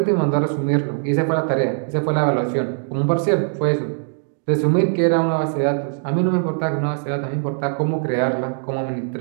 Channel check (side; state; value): left; silent; digital silence